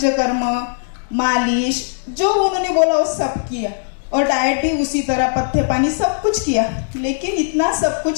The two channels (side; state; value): right; silent; digital silence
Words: मालिश, जो उन्होंने बोला वो सब किया। और डाइट भी उसी तरह, पत्ते पानी सब कुछ किया। लेकिन इतना सब